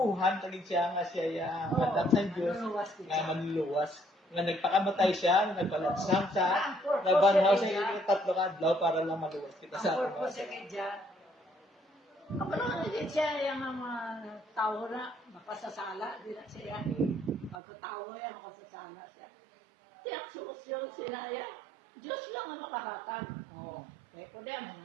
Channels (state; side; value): drops out; left; at 17.6 s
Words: ta gid siya nga siya anak ng Diyos nga manluluwas. Nga nagpakamatay siya, nagpalansang siya, nagbanhaw sa tatlo ka adlaw para lang maluwas kita sa ang purpose kay Diyan. Ako lang din siya yung mga tao na makasasala, di na siya. Pagkatao yan, makasasala siya. Tiyang solusyon sila yan. Diyos lang ang makahatag. Oo. Kaya ko din mo